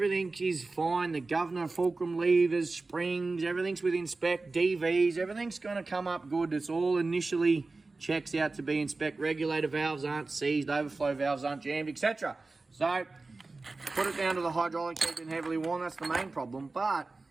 is fine. The governor, fulcrum levers, springs, everything's within spec, DVs, everything's going to come up good. It's all initially checks out to be in spec. Regulator valves aren't seized, overflow valves aren't jammed, etc. So put it down to the hydraulic head been heavily worn. That's the main problem. But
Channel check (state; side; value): quieter; left; 3.5 dB